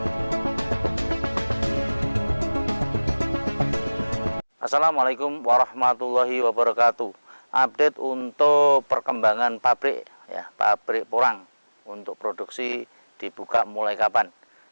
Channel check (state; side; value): inverted; both; correlation -1.00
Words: Assalamualaikum warahmatullahi wabarakatuh. Update untuk perkembangan pabrik ya, pabrik porang untuk produksi dibuka mulai kapan.